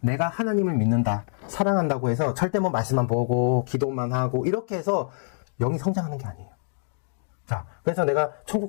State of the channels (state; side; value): silent; right; digital silence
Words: 내가 하나님을 믿는다, 사랑한다고 해서 절대 뭐 말씀만 보고 기도만 하고 이렇게 해서 영이 성장하는 게 아니에요. 자, 그래서 내가 천국